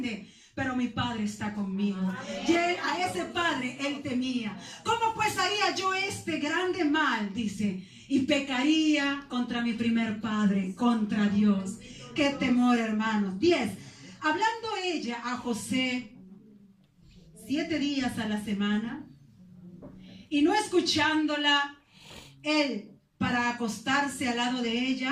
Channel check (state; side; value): identical; both; correlation 1.00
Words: pero mi padre está conmigo. Y él, a ese padre él temía. ¿Cómo pues haría yo este grande mal? Dice, y pecaría contra mi primer padre, contra Dios. Qué temor, hermanos. 10. Hablando ella a José 7 días a la semana, y no escuchándola él para acostarse al lado de